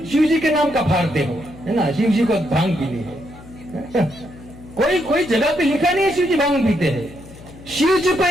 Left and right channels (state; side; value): noise; left; hum, 19 dB below the sound